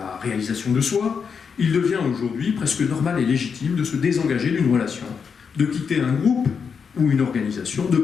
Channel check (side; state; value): right; quieter; 6.2 dB